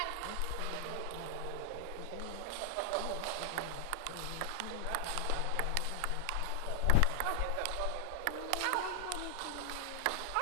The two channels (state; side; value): different; both; correlation 0.00